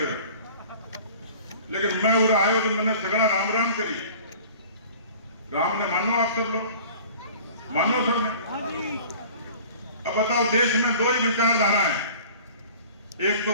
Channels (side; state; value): both; inverted; correlation -0.45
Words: लेकिन मैं उधर आयो तो मैंने सगड़ा राम राम करी। राम ने मानो, आप सब लोग मानो सब ने। अब बताओ, देश में दो ही विचारधारा है, एक तो